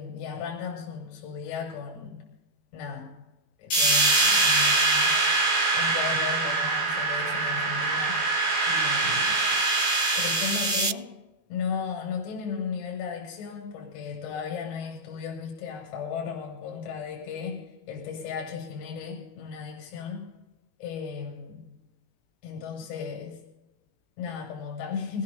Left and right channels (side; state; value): right; late; 19 ms